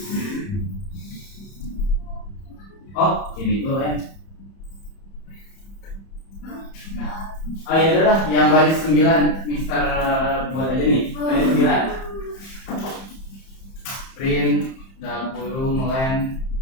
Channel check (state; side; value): late; right; 30 ms